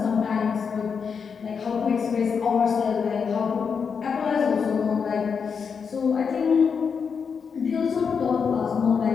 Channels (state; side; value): quieter; right; 6.1 dB